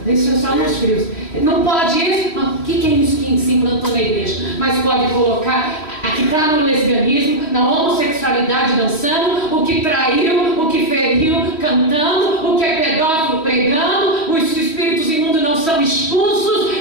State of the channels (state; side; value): late; right; 3.1 ms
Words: isso é só nos frios. Não pode isso. O que é isso que se implantou na igreja? Mas pode colocar que está no lesbianismo, na homossexualidade dançando, o que traiu, o que feriu cantando, o que é pedófilo pregando, os espíritos imundos não são expulsos.